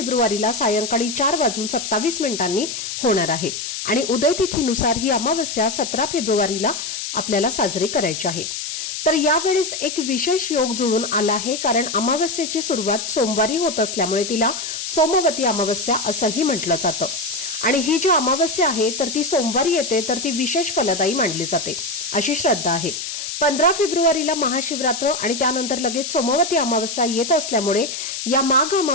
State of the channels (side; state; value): left; noise; hiss, 5 dB below the sound